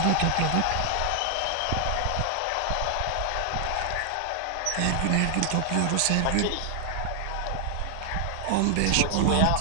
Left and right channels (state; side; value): different; both; correlation 0.00